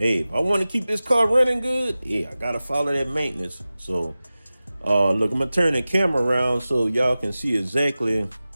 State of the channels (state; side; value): inverted; both; correlation -0.96